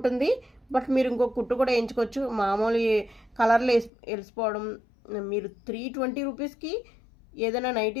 బట్ మీరు ఇంకొక కుట్టు కూడా వేయించుకోవచ్చు. మామూలు కలర్లు వెలిసిపోవడం, మీరు 320 రూపీస్కి ఏదైనా నైటీ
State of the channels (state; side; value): drops out; right; at 3.9 s